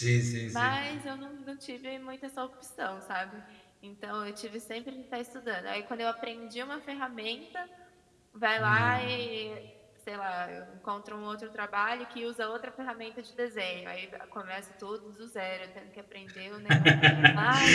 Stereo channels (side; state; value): both; identical; correlation 1.00